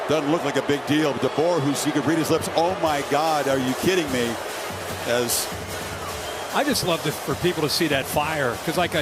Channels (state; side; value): identical; both; correlation 1.00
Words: Doesn't look like a big deal, but DeBoer, who's, you could read his lips, oh my God, are you kidding me? As I just love for people to see that fire, because like